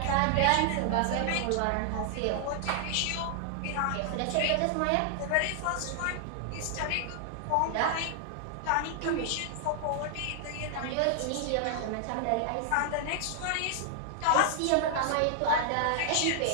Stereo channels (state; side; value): different; both; correlation 0.00